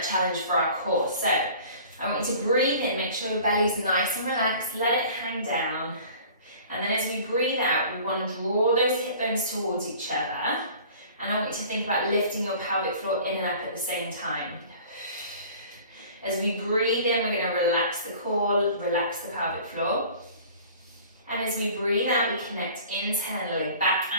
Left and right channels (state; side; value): inverted; both; correlation -0.46